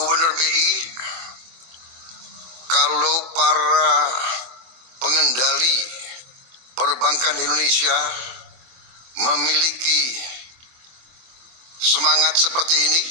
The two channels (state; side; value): late; left; 23 ms